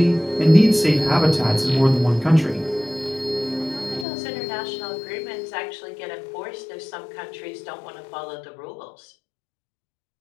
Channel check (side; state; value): right; drops out; at 4.0 s